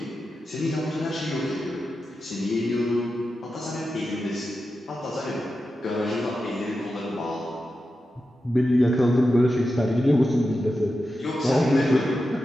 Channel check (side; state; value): both; normal; correlation 0.91